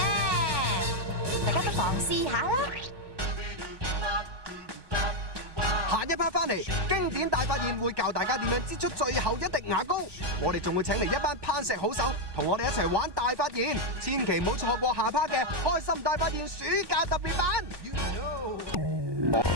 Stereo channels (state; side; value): late; left; 1.2 ms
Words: 大家不妨試下啦！下一 part 翻嚟，經典大發現會教大家點樣擠出最後一滴牙膏。我哋仲會請嚟一班攀石好手，同我哋一齊玩大發現，千祈唔好錯過下 part 嘅開心大發現暑假特別版。